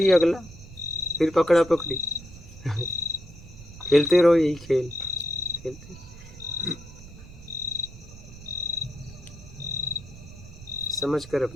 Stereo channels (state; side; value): noise; right; rumble, 17 dB below the sound